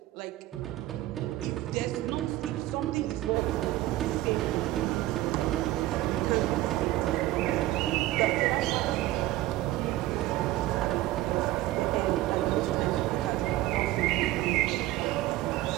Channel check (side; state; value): left; quieter; 16.2 dB